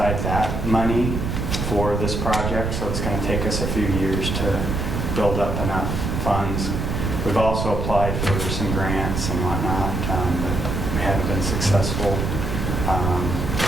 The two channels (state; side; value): noise; right; rumble, 2 dB below the sound